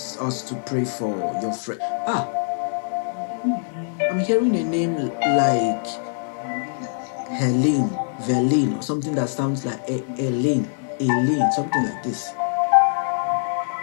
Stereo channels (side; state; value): right; silent; 60 dB below the other